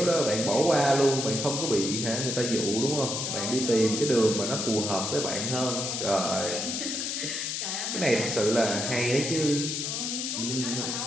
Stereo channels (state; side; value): noise; left; hiss, 2 dB below the sound